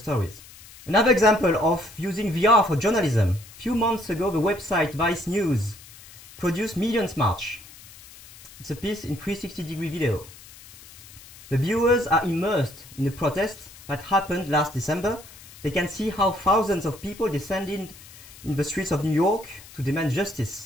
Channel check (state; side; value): noise; left; hiss, 20 dB below the sound